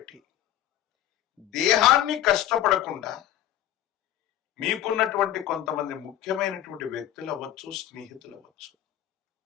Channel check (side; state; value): right; quieter; 12.5 dB